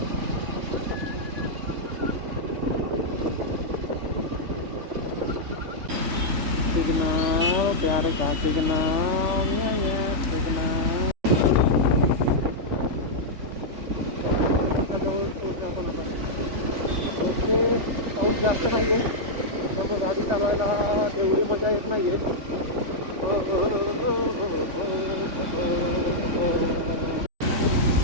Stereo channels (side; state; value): left; late; 3.5 ms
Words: सिग्नल, प्यारे का सिग्नल, सिग्नल. जवळ पोहोचलो आपण आता. ओके, पाऊस जास्त नाही आहे त्यामुळे गाडी चालवायला तेवढी मजा येत नाही आहे.